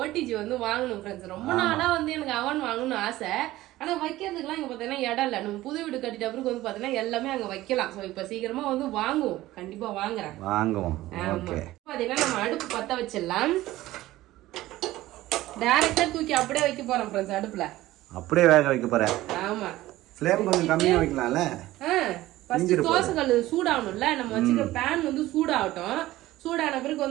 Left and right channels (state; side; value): quieter; left; 16.4 dB